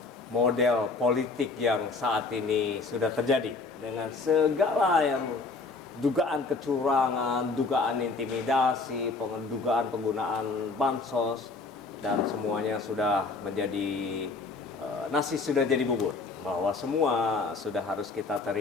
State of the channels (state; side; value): quieter; right; 3.9 dB